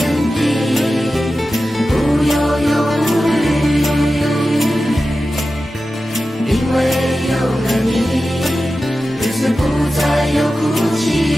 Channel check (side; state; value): both; normal; correlation 0.93